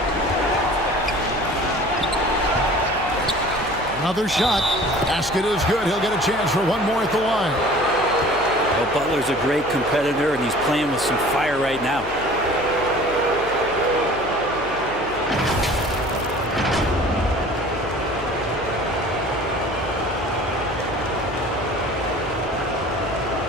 Another shot. Basket is good. He'll get a chance for one more at the line. Well, Butler's a great competitor, and he's playing with some fire right now.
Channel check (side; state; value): left; noise; hum, 17 dB below the sound